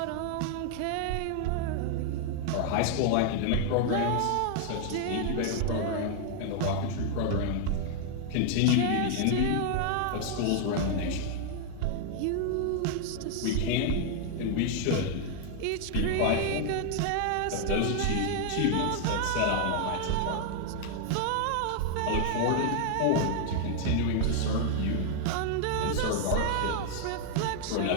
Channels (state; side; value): different; both; correlation 0.00